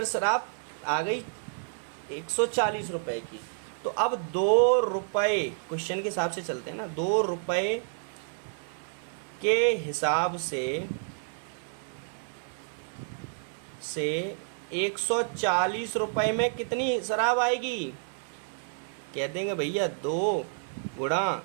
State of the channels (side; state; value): left; silent; 58 dB below the other